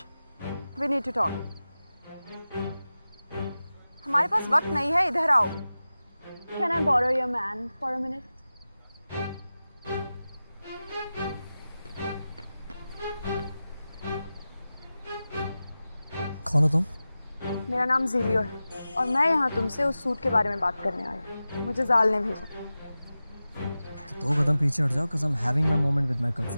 we need to talk. हमारे पास वक्त नहीं है, इधर आओ। Can I borrow your man for a minute? कौन हो तुम? मेरा नाम ज़ीलियो है और मैं यहाँ तुमसे उस सूट के बारे में बात करने आई हूँ। मुझे जाल ने भेजा। तो 2 कदम पीछे हट जाओ, because I'm having my moment with my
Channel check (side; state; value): both; inverted; correlation -0.95